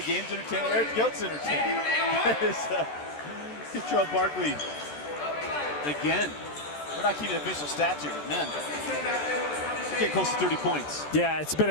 game's entertaining. Everything else is entertaining. Control Barkley. Again, we're not keeping official stats here, but man, we're getting close to 30 points. Yeah, it's been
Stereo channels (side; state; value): right; late; 14 ms